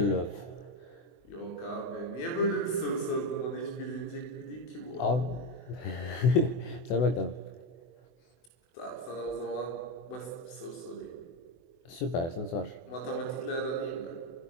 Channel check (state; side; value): late; right; 24 ms